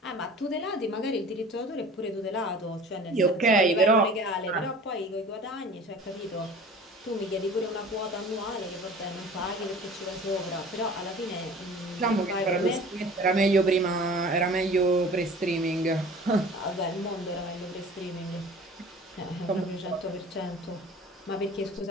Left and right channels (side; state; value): both; normal; correlation 0.44